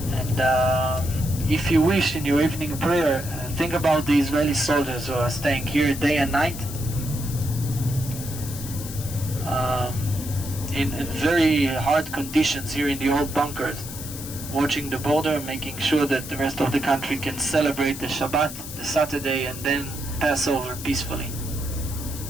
And if you wish in your evening prayer, think about the Israeli soldiers who are staying here day and night in very hard conditions here in the old bunkers, watching the border, making sure that the rest of the country can celebrate the Shabbat, the Saturday, and then pass over peacefully.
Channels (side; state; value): left; noise; hiss, 11 dB below the sound